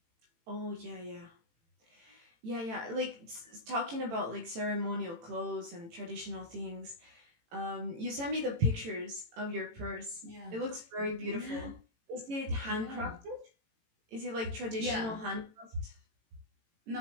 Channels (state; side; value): late; left; 18 ms